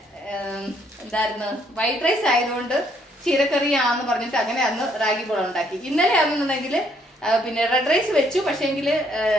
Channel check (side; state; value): both; normal; correlation 0.68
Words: എന്തായിരുന്നു വൈറ്റ് റൈസ് ആയതുകൊണ്ട് ചീരക്കറിയാന്ന് പറഞ്ഞിട്ട് അങ്ങനെ അന്ന് റാഗി ബോൾ ഉണ്ടാക്കി. ഇന്നലെ ആണെന്നുണ്ടെങ്കിൽ പിന്നെ റെഡ് റൈസ് വെച്ചു. പക്ഷേങ്കിൽ